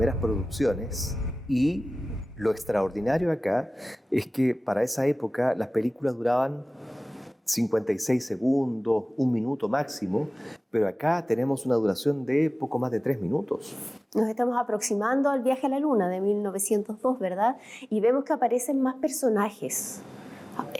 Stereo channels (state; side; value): normal; both; correlation 0.98